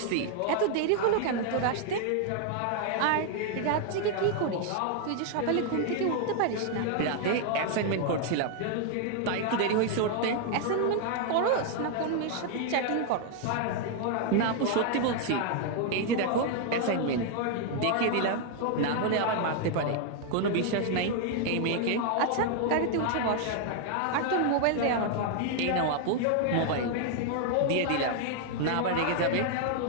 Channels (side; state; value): both; different; correlation 0.00